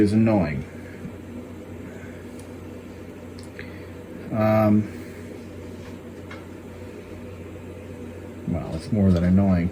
annoying. Well, it's more than annoying.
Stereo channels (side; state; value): both; identical; correlation 1.00